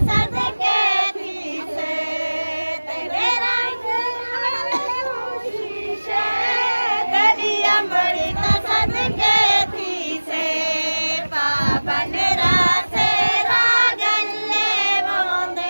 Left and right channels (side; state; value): both; inverted; correlation -1.00